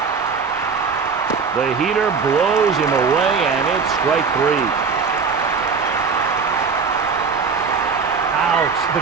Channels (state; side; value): quieter; left; 5.4 dB